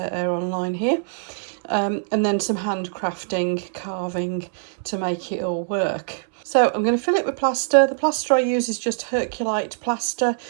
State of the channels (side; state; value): left; silent; 63 dB below the other